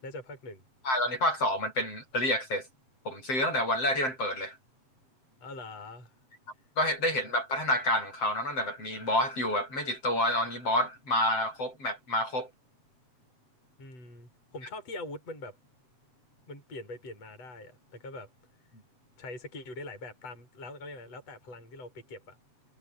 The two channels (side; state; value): right; late; 7.7 ms